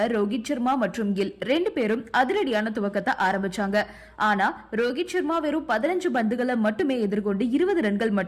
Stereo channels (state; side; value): identical; both; correlation 1.00